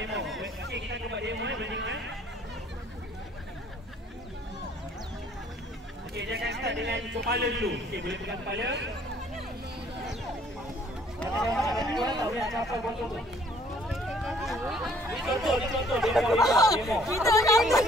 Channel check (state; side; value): normal; both; correlation 0.60